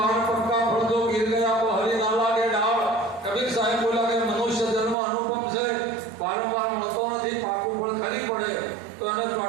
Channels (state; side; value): drops out; left; at 5.0 s